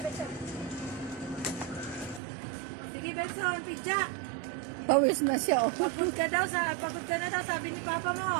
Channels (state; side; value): drops out; left; at 2.2 s